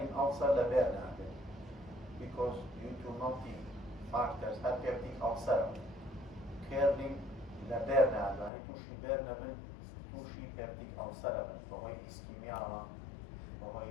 ulcer لبرنا because due to multi factors, peptic ulcer, curling لبرنا يعني توشي برنا من توشي peptic ulcer وهي ischemia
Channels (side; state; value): right; drops out; at 8.5 s